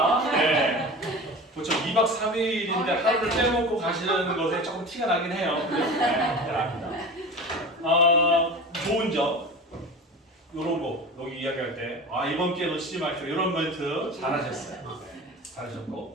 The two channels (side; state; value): both; normal; correlation 0.33